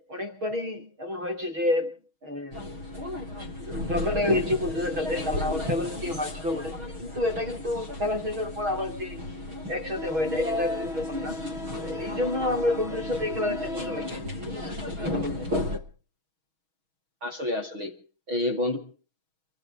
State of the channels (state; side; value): late; left; 6.3 ms